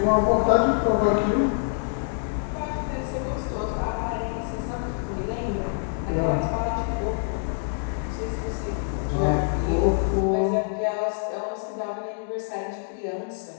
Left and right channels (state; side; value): silent; right; digital silence